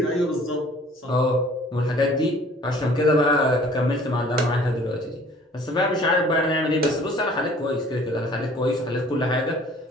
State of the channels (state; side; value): normal; both; correlation 0.53